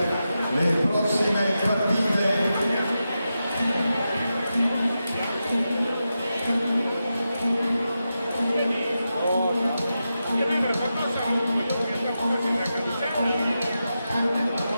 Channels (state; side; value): inverted; both; correlation -0.90